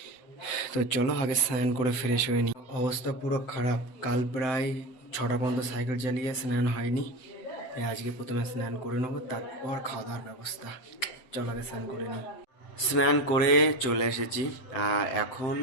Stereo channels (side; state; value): right; late; 7.8 ms